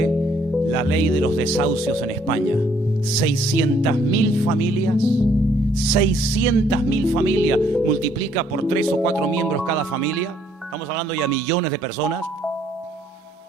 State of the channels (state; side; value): normal; both; correlation 0.66